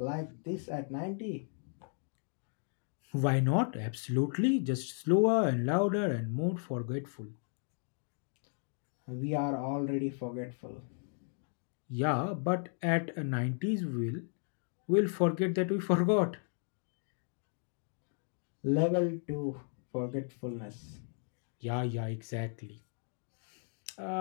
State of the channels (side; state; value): right; silent; 55 dB below the other